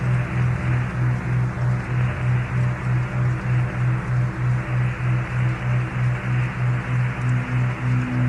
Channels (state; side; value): identical; both; correlation 1.00